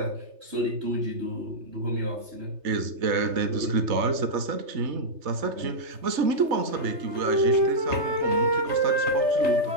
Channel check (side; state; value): left; late; 3.3 ms